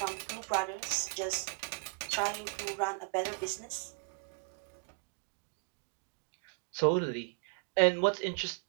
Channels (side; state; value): left; quieter; 38.3 dB